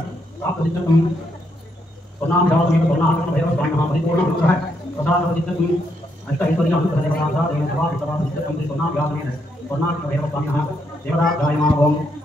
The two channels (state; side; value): normal; both; correlation 0.77